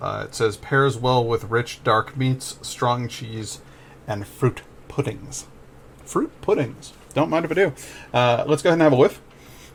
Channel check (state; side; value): identical; both; correlation 1.00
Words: it says, pairs well with rich, dark meats, strong cheese, and fruit puddings. Fruit puddings. Don't mind if I do. Let's go ahead and have a whiff.